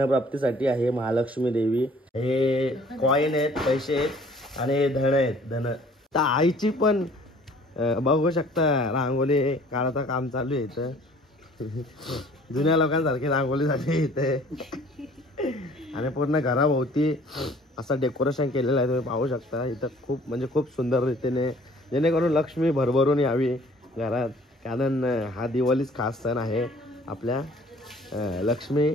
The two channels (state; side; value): normal; both; correlation 0.54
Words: आहे महालक्ष्मी देवी. हे कॉईन आहेत, पैसे आहेत, आणि हे धन आहेत धन. तर आईची पण बघू शकता रांगोळी काढायचं काम चालू आहे इथं. जुन्या लोकांसारखी रांगोळी झाली इथे. आणि पूर्ण घराभोवती असं डेकोरेशन केलेलं आहे, तुम्ही पाहू शकता इथं. खूप म्हणजे खूप सुंदर रीतीने, जेणेकरून लक्ष्मी भरभरून यावी घरात. कारण हा दिवाळीच खास सण आहे आपल्या लक्ष्मी